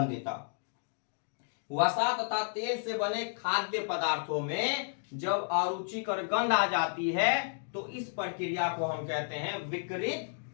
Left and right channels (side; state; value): right; silent; digital silence